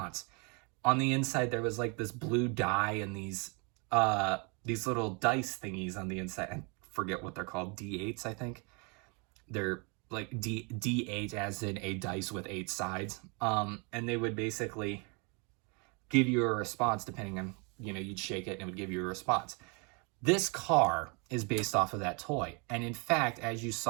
On the inside, there was like this blue dye and these little dice thingies on the inside. I forget what they're called, D8s, I think. They're like D8 as in a dice with 8 sides. And they would basically give you a response depending on, you'd shake it and it would give you a response. This car is based off of that toy. And in fact, as you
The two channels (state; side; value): quieter; left; 32.5 dB